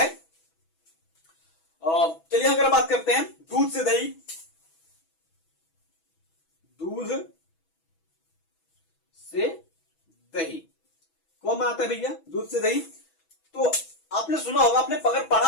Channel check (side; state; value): right; late; 6.1 ms